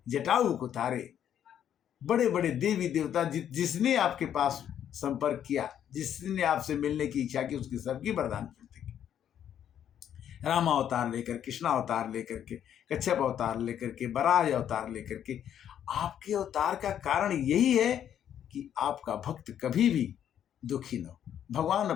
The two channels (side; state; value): right; quieter; 9.8 dB